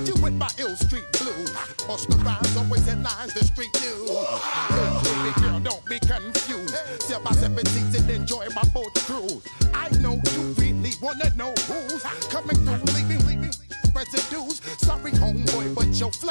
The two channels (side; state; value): both; inverted; correlation -1.00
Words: you with my ill street blues. Bust the rhymes, always in lines, the street news. Baby girl, don't be confused. Sell my 17s and enjoy my boat cruise. I know you really wanna know who's coming through, leaving residues. Sorry, homeboy, but your